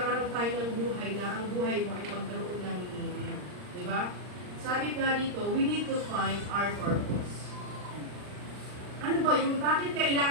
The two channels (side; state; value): left; late; 39 ms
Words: tayo ng buhay na ang buhay mo ay magkaroon ng meaning. Di ba? Sabi nga dito, we need to find our purpose. Ano ba yung, bakit